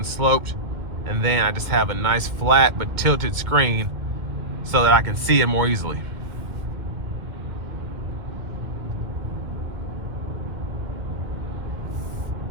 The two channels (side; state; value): left; late; 2.1 ms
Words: sloped. And then I just have a nice flat but tilted screen so that I can see it more easily.